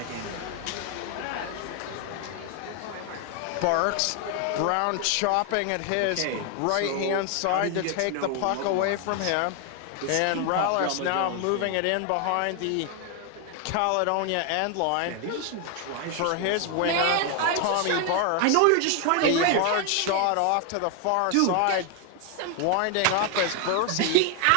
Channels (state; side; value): different; both; correlation 0.01